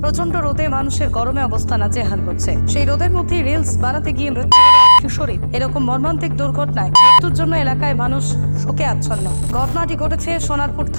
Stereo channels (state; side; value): inverted; both; correlation -1.00